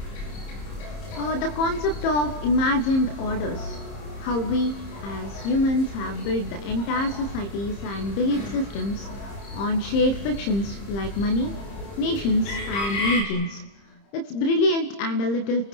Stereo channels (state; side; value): late; right; 30 ms